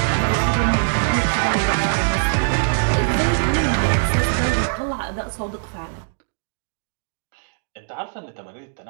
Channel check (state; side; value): silent; left; digital silence